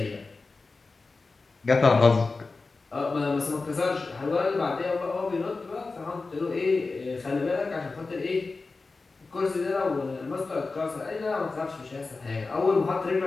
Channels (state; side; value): quieter; right; 3.9 dB